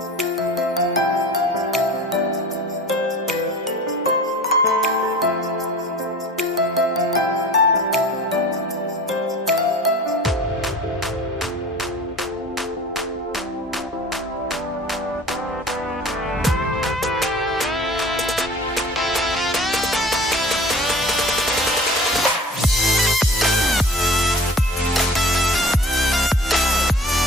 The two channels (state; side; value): normal; both; correlation 0.41